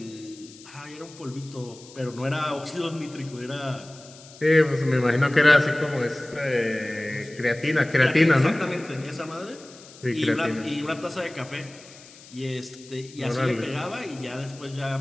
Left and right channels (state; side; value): noise; left; hiss, 20 dB below the sound